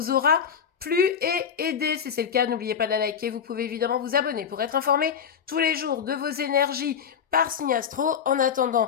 aura plu et aidé. Si c'est le cas, n'oubliez pas de la liker. Vous pouvez évidemment vous abonner pour être informé tous les jours de vos énergies par signe astro. En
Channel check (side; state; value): right; quieter; 7.5 dB